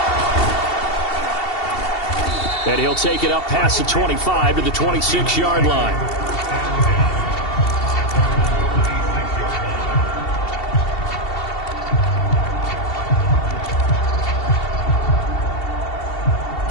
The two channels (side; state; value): right; late; 2.7 ms